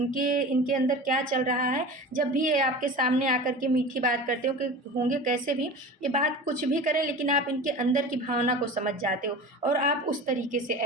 इनके अंदर क्या चल रहा है। जब भी ये आपके सामने आकर के मीठी बात करते हो कि होंगे कैसे भी, ये बात कुछ भी करें लेकिन आप इनके अंदर की भावना को समझ जाते हो और आप उस तरीके से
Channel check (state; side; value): normal; both; correlation 0.34